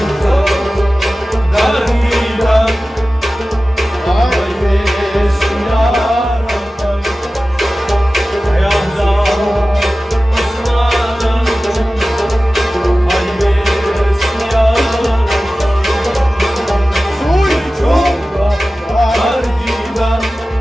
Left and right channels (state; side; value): normal; both; correlation 0.96